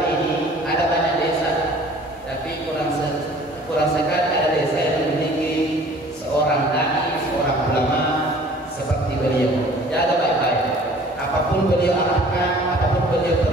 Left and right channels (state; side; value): normal; both; correlation 0.50